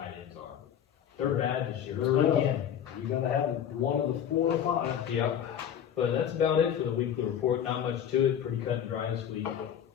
ends are. They're bad this year, Sure is. again. You gotta have one of the 4 or 5. Yep. But that's about it for the weekly report. Not much to it, pretty cut and dry this week.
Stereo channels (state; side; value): quieter; right; 9.2 dB